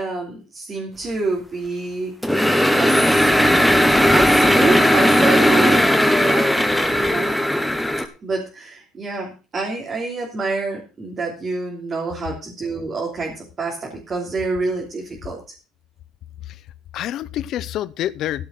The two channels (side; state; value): both; normal; correlation 0.90